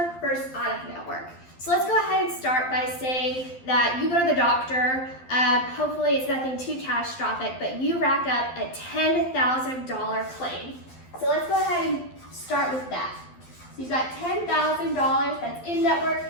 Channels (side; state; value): right; late; 12 ms